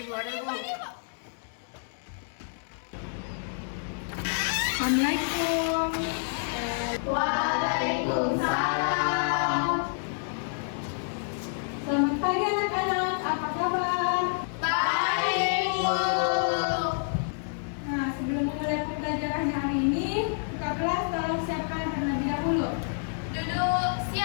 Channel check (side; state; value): right; silent; digital silence